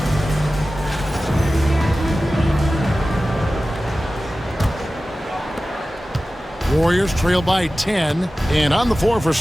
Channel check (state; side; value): normal; both; correlation 0.95